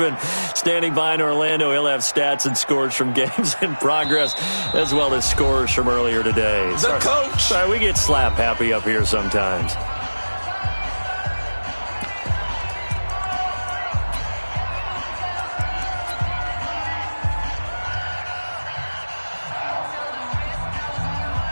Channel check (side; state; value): both; inverted; correlation -1.00